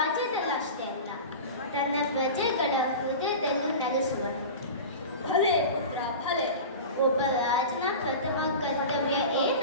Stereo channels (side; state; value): both; inverted; correlation -0.31